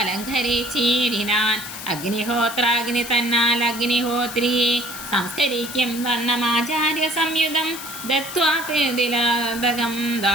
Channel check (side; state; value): left; noise; hiss, 10 dB below the sound